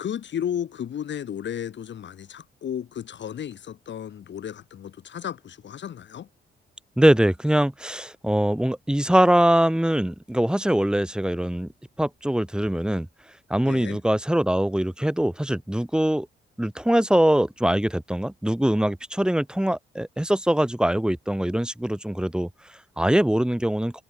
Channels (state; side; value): normal; both; correlation 0.96